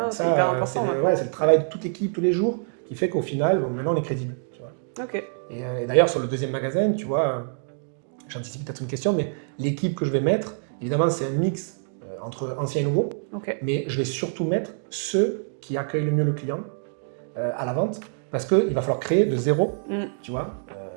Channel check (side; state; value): left; silent; digital silence